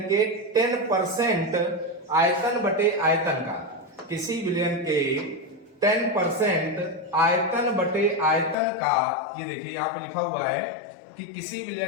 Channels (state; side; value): drops out; right; at 8.6 s